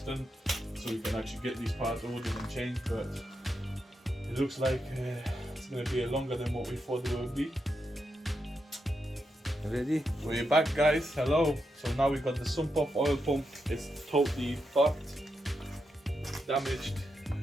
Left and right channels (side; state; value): both; normal; correlation 0.85